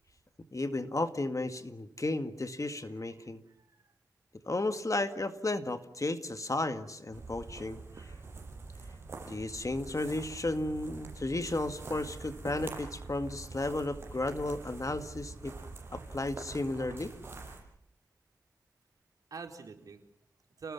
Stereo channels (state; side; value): normal; both; correlation 0.79